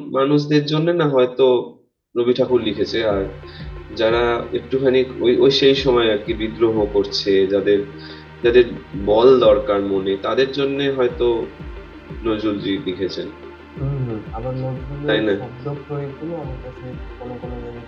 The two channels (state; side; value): identical; both; correlation 1.00